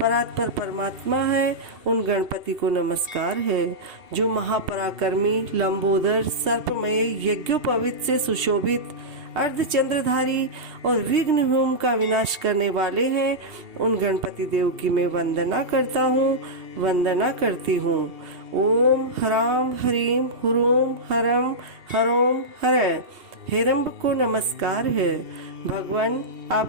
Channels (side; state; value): left; late; 2.7 ms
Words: परमात्मा है, उन गणपति को नमस्कार है। जो महापराक्रमी लंबोदर सर्पमय यज्ञोपवीत से सुशोभित अर्धचंद्रधारी और विघ्न होम का विनाश करने वाले हैं, उन गणपति देव की मैं वंदना करता हूँ, वंदना करती हूँ। ओम ह्रां ह्रीं हुरूं हरं हरों हरे हिरंब को नमस्कार है। भगवान आप